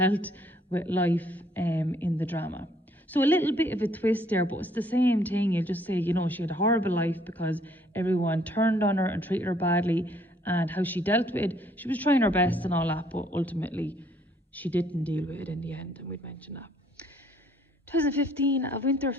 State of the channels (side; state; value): both; normal; correlation 0.64